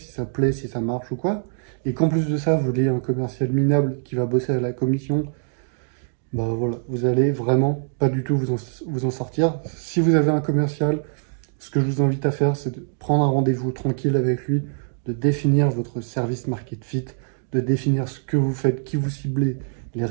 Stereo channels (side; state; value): left; silent; digital silence